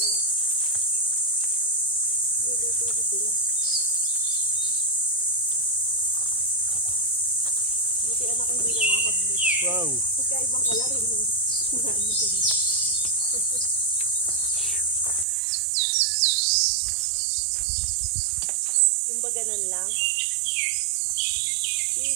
Luluto sila. Buti anak ko hindi na nakakablit. Wow. Pagkaibang kalarin mo. Yung ba ganun lang?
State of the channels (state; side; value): drops out; left; at 15.2 s